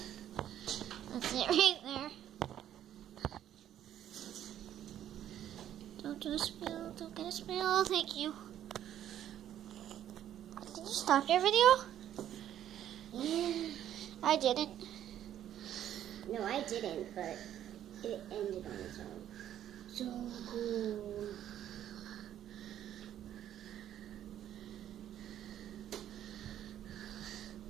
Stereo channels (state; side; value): quieter; left; 11.1 dB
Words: That's it right there. Don't do a spill. Don't get a spill. Thank you. Did you stop your video? Yeah. I didn't. No, I didn't, but it ended on its own. So cool.